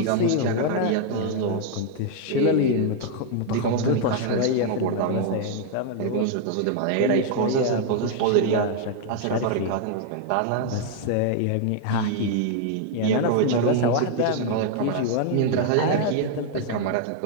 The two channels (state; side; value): different; both; correlation 0.00